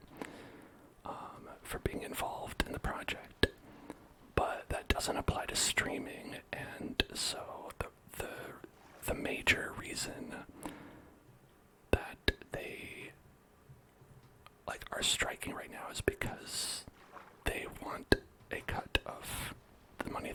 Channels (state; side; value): identical; both; correlation 1.00